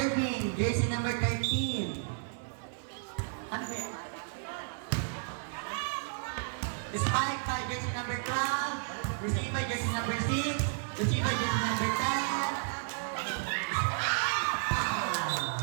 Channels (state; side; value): silent; left; 56 dB below the other